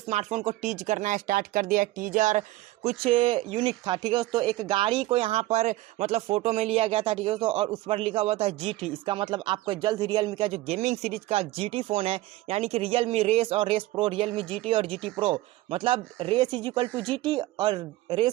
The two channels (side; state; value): left; quieter; 17.3 dB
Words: को टीज करना स्टार्ट कर दिया। टीजर कुछ यूनिक था। ठीक है दोस्तों, एक गाड़ी को यहाँ पर मतलब फोटो में लिया गया था। ठीक है दोस्तों, और उस पर लिखा हुआ था GT। इसका मतलब आपको जल्द रियलमी का जो गेमिंग सीरीज का GT फोन है, यानी कि रियलमी रेस और रेस प्रो, रियलमी GT और GT प्रो, मतलब race is equal to GT और